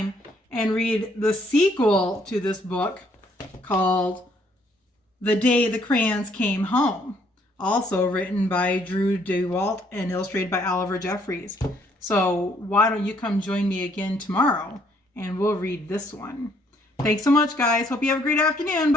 and read the sequel to this book called The Day the Crayons Came Home. Also written by Drew Daywalt and illustrated by Oliver Jeffries. So why don't you come join me again tomorrow and we'll read this one. Thanks so much, guys. Hope you have a great afternoon.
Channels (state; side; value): normal; both; correlation 0.66